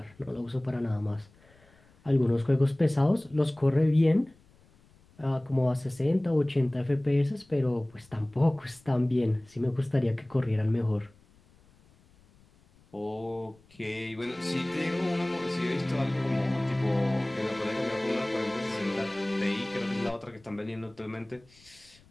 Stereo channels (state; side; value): noise; left; rumble, 29 dB below the sound